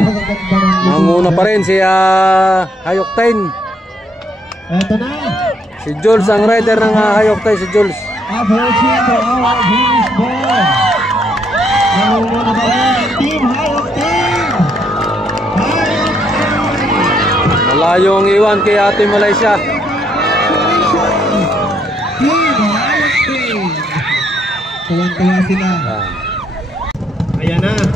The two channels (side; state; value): both; normal; correlation 0.73